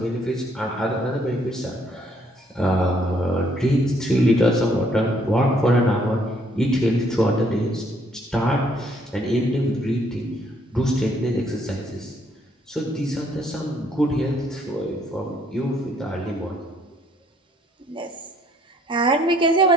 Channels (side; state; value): both; normal; correlation 0.66